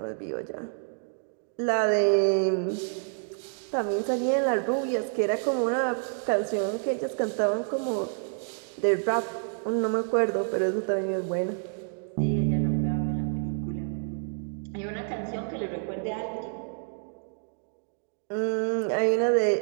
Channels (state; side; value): silent; left; 59 dB below the other